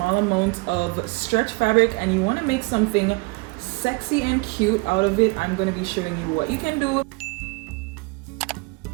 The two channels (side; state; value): left; quieter; 28.3 dB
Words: amount of stretch fabric and you want to make something sexy and cute out of it, I'm going to be showing you what you can do.